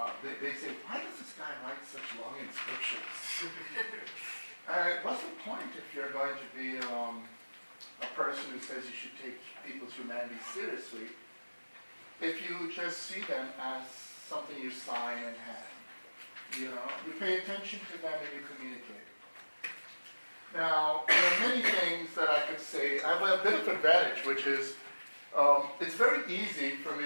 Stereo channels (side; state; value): both; inverted; correlation -1.00